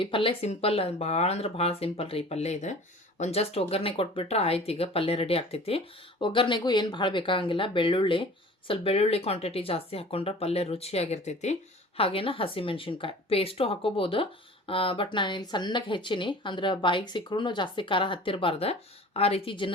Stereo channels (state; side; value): normal; both; correlation 0.43